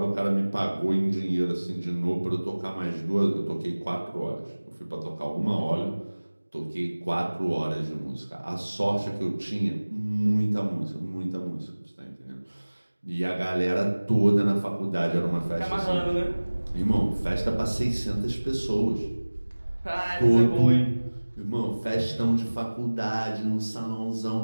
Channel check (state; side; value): inverted; both; correlation -1.00